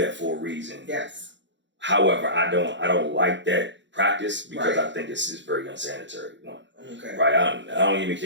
for a reason. Yes. However, I don't like that practice because Right. I think it's very unsanitary. One. Okay. Right. I don't even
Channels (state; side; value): late; left; 0.53 ms